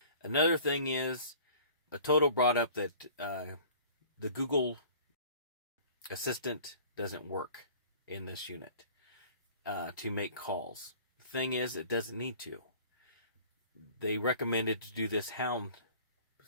Another thing is, Atoto brought up that the Google Assistant doesn't work in this unit to make calls. The thing is, it doesn't need to. They recommended to do this Hound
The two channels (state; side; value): inverted; both; correlation -0.47